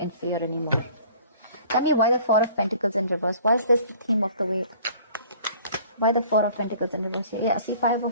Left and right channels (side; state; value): both; inverted; correlation -0.51